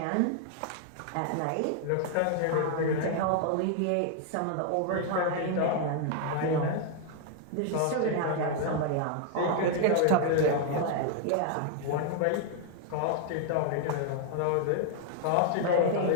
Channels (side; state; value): both; different; correlation 0.00